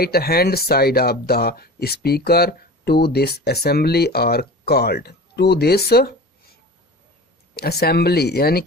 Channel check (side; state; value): both; normal; correlation 0.36